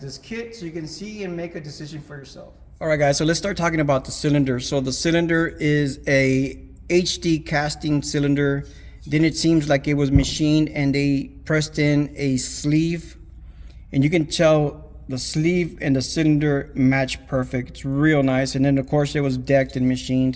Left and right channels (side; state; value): both; identical; correlation 1.00